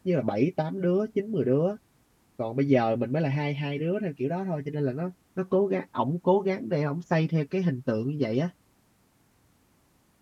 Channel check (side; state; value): both; identical; correlation 1.00